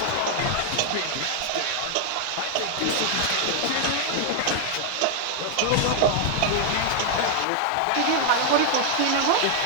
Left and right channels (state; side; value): different; both; correlation 0.00